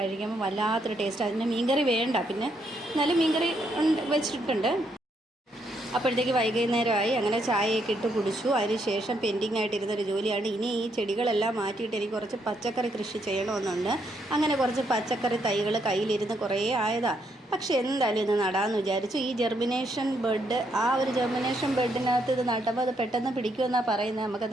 വല്ലാത്തൊരു ടേസ്റ്റ്. അതിന് മീൻകറി വേണ്ട, പിന്നെ എന്നാലും മീൻകറി വെച്ചിട്ടുണ്ട്. അപ്പോഴത്തേക്ക് വൈകുന്നേരമായി. അങ്ങനെ ചായയൊക്കെ ഇട്ട് കുടിച്ചു. അതിന് ശേഷം പെൻഡിങ് ആയിട്ടിരുന്നൊരു ജോലിയാണ്, ഇനി ഈ ചെടികളെല്ലാം മാറ്റിയിട്ട് എനിക്ക് കുറച്ച് പച്ചക്കറി കൃഷി ചെയ്യണമെന്നുണ്ട്. അങ്ങനെ കുറച്ച് പച്ചക്കറി തൈകൾ കയ്യിലിരുന്ന് കുറേ ആയതാണ്. പക്ഷേ എന്തായാലും ഇത് നടാമെന്ന് വിചാരിച്ചു. ഈ ജെർമിനേഷൻ ബെഡ്, ആ ഒരു ജെർമിനേഷൻ ബെഡിനകത്ത് ഇത് നട്ടപ്പോൾ അത് പെട്ടെന്ന് പിടിക്കുമെന്നാണ് പറയുന്നത്. നമുക്ക്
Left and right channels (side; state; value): both; normal; correlation 0.75